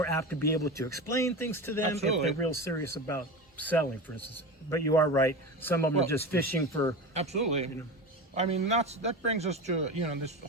apt to be able to explain things to them if they're real serious about selling, for instance. But you are right. Some of them are just fishing for. Absolutely. I mean, that brings us to this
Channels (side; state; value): both; normal; correlation 0.26